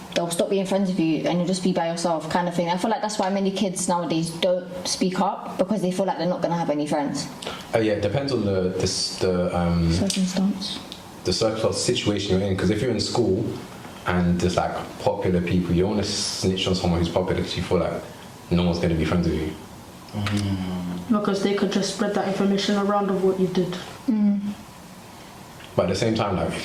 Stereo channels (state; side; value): identical; both; correlation 1.00